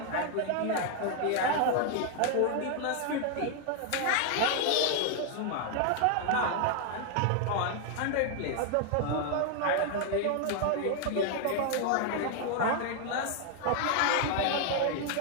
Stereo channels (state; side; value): different; both; correlation 0.00